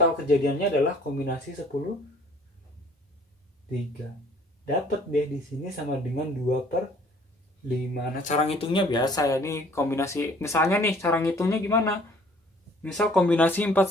kejadiannya adalah kombinasi 10 3. Dapat deh di sini sama dengan 2/5. Nah, cara ngitungnya biasa ya. Ini kombinasi, misalnya nih cara ngitungnya gimana? Misal kombinasi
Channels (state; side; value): normal; both; correlation 0.56